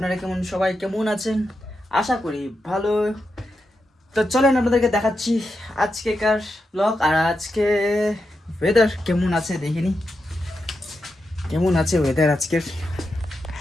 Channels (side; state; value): both; normal; correlation 0.87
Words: সবাই কেমন আছেন? আশা করি ভালো। তো চলেন আপনাদেরকে দেখাচ্ছি আজকেকার ব্লগ। আর আজকে ওয়েদার কেমন আছে দেখিনি, কেমন আছে ওয়েদার আজকের।